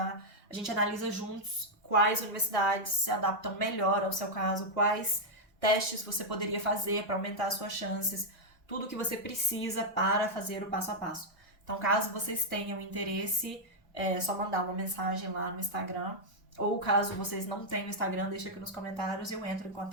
A gente analisa juntos quais universidades se adaptam melhor ao seu caso, quais testes você poderia fazer para aumentar as suas chances, tudo que você precisa para fazer o passo a passo. Então, caso vocês tenham interesse, é só mandar uma mensagem lá no Instagram. Ou caso vocês não tenham Instagram, deixa aqui nos comentários e eu entro em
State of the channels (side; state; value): both; normal; correlation -0.03